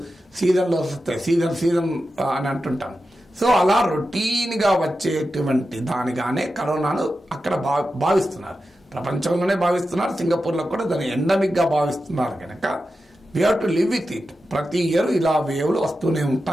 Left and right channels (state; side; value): normal; both; correlation 0.91